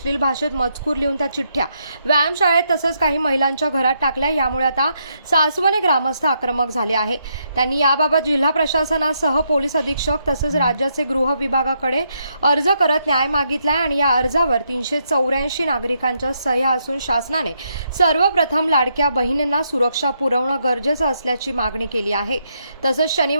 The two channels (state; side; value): inverted; both; correlation -0.78